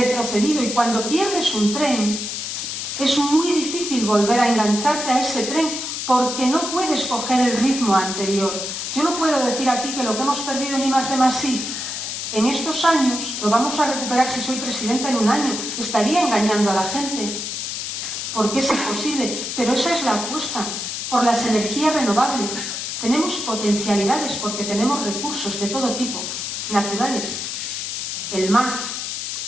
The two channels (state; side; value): noise; left; hiss, 4 dB below the sound